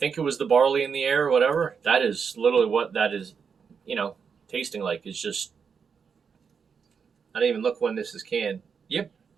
it was the barley in the air or whatever. That is literally what that is tasting like. It's just, I didn't even look when this is canned. Yep,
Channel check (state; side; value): quieter; left; 6.2 dB